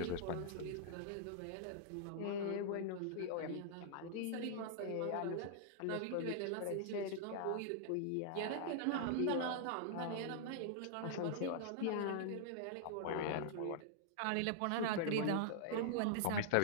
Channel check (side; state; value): both; different; correlation -0.01